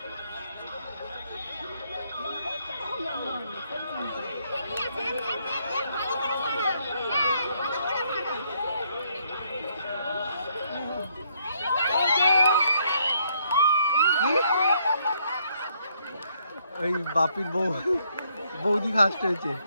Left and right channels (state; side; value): inverted; both; correlation -0.70